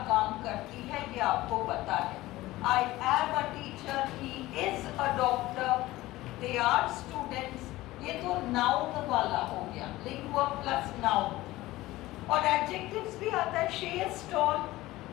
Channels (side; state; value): right; quieter; 17.7 dB